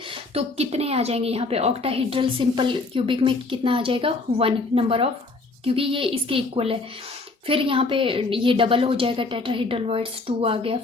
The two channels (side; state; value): right; quieter; 3.5 dB